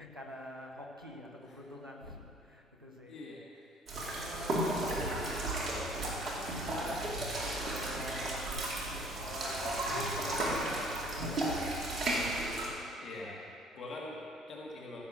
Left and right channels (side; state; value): both; normal; correlation 0.55